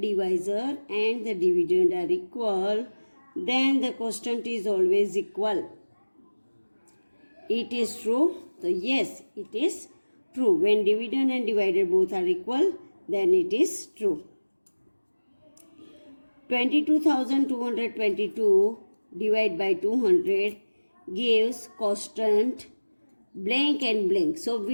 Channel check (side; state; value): both; inverted; correlation -1.00